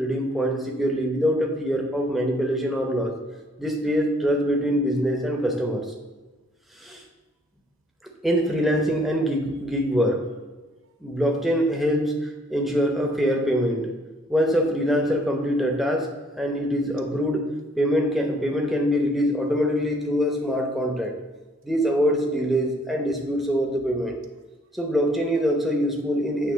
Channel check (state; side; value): normal; both; correlation 0.64